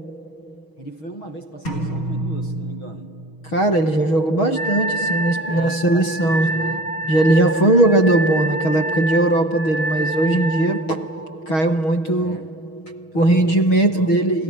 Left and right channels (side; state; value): right; late; 6.3 ms